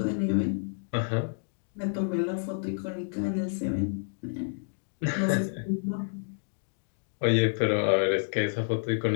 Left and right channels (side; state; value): right; silent; digital silence